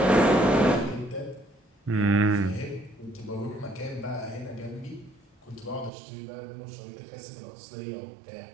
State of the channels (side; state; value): left; drops out; at 5.9 s